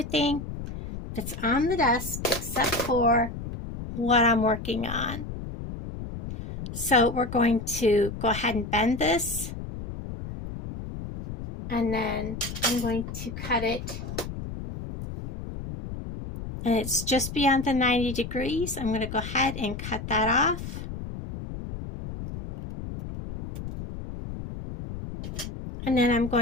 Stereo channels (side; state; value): left; noise; rumble, 8 dB below the sound